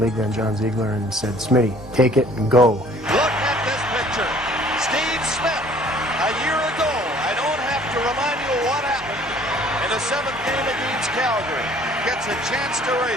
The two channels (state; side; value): normal; both; correlation 0.55